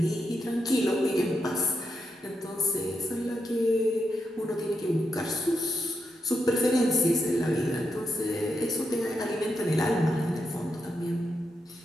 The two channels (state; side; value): normal; both; correlation 0.84